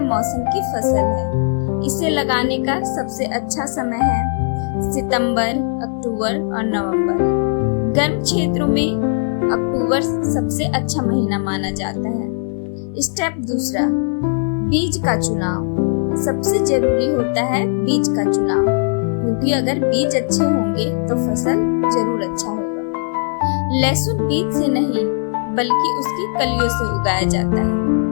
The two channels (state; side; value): silent; right; digital silence